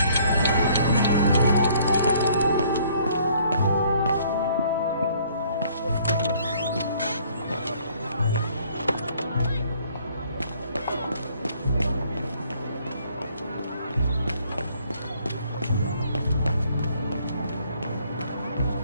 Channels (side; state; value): both; inverted; correlation -0.61